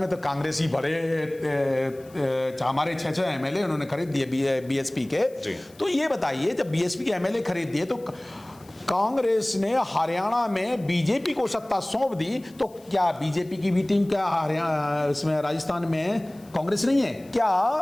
तो कांग्रेस ही बड़े, हमारे 6 एमएलए उन्होंने खरीद दिए बीएसपी के। तो ये बताइए, जब बीएसपी के एमएलए खरीद दिए तो कांग्रेस ने हरियाणा में बीजेपी को सत्ता सौंप दी, तो क्या बीजेपी की भी टीम क्या हरियाणा इसमें राजस्थान में कांग्रेस नहीं है क्या?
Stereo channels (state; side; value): noise; left; hiss, 27 dB below the sound